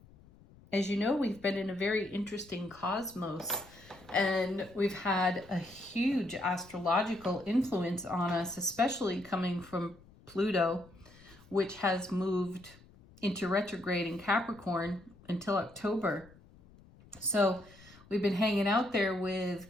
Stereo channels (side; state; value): left; noise; rumble, 24 dB below the sound